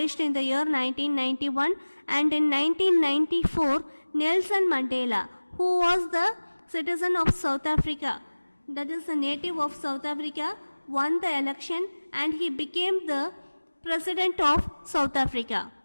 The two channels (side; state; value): both; inverted; correlation -1.00